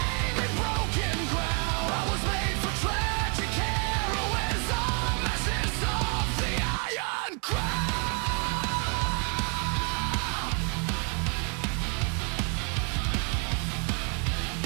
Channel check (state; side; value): quieter; left; 37.5 dB